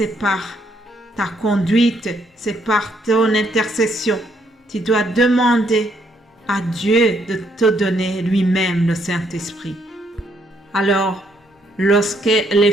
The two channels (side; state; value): both; normal; correlation 0.72